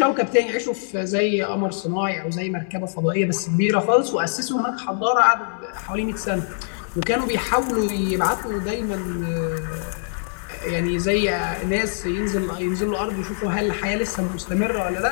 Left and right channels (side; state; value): right; silent; digital silence